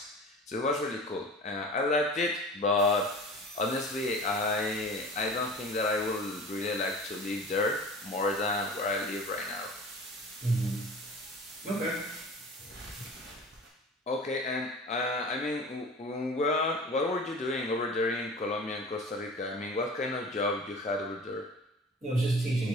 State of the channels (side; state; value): both; normal; correlation 0.38